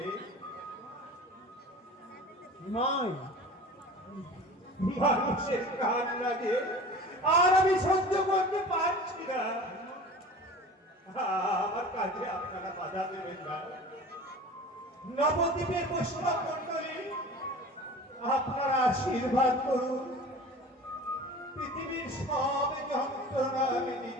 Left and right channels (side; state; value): both; normal; correlation 0.38